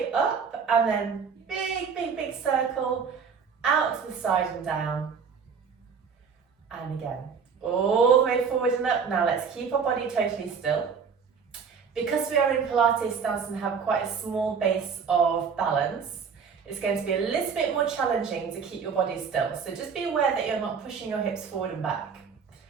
up, and then big circle out to the side and down, and again all the way forward and up. Now let's keep our body totally still. Because we are in Pilates stance and have quite a small base of balance, it's going to be a little bit more challenging to keep your body still. So just be aware that you're not pushing your hips forward and back.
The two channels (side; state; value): left; quieter; 6.1 dB